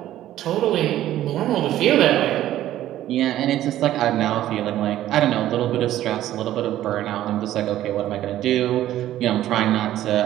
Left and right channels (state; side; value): quieter; left; 13.2 dB